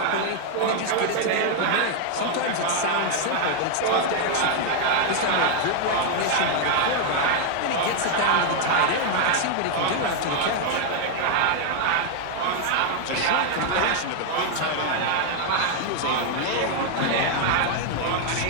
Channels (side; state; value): both; different; correlation 0.00